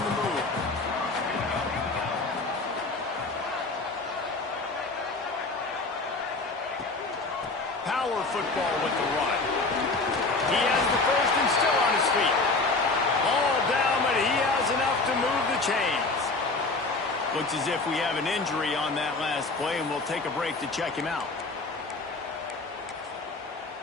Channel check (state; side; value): quieter; right; 3.5 dB